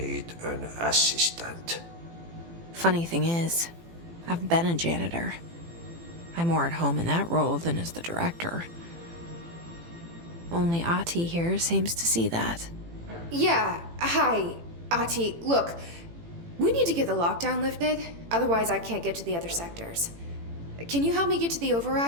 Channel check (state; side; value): late; left; 18 ms